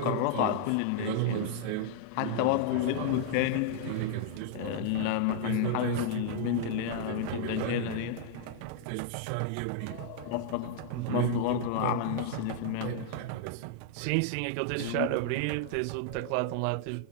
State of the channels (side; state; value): both; different; correlation -0.01